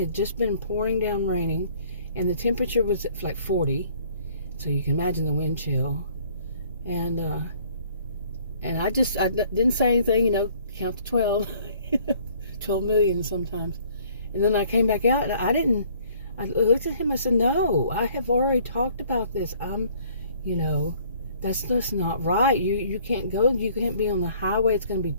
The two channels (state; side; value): inverted; both; correlation -0.58